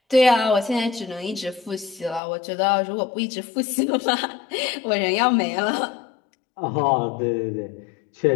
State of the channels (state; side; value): drops out; right; at 2.2 s